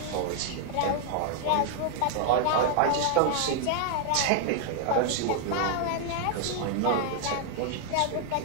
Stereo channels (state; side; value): different; both; correlation 0.00